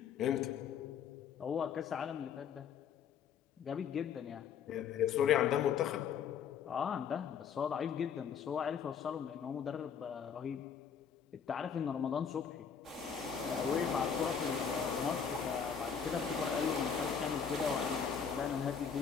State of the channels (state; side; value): quieter; right; 7.2 dB